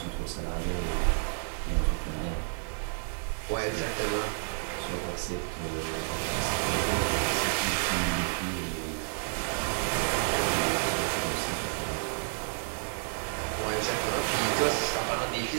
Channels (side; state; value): left; silent; 58 dB below the other